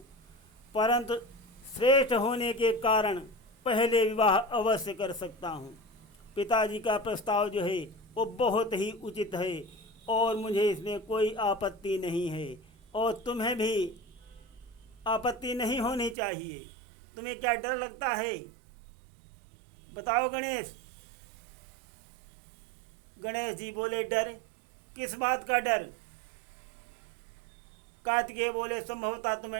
परंतु श्रेष्ठ होने के कारण पहले विवाह अवश्य कर सकता हूँ। पिताजी का प्रस्ताव जो है वो बहुत ही उचित है और मुझे इसमें कोई आपत्ति नहीं है। और तुम्हें भी आपत्ति नहीं होनी चाहिए। तुम्हें क्या डर लगता है? बताओ गणेश। गणेश जी बोले, डर? किस बात का डर? कार्तिकेय बोले, संभवतः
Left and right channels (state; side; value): drops out; left; at 16.2 s